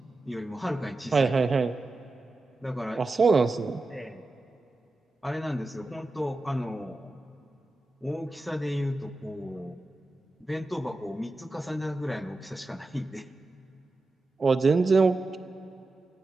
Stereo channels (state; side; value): quieter; left; 3.0 dB